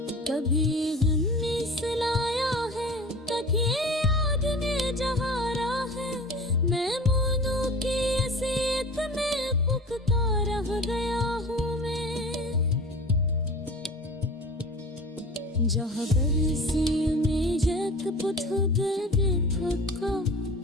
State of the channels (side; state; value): both; normal; correlation 0.38